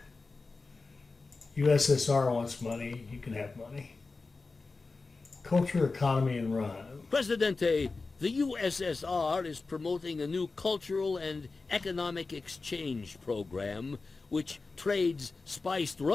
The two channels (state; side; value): quieter; right; 3.9 dB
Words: USSR wants money, you can have money. Culture, economy, and run. Presidente, the USSR is promoting a new cultural and economic exchange program which trades spiced